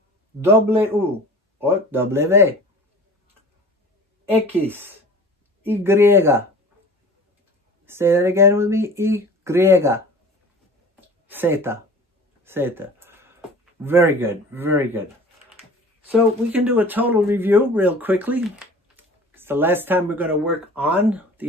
W or W. X, Y. Say that again with me. Y. Zeta. Zeta. Very good. Very good. So we can do a total review real quickly. It's the last time we're going to work on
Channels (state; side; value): normal; both; correlation 0.42